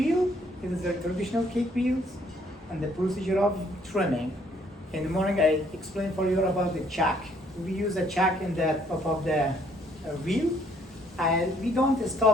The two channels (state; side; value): normal; both; correlation 0.65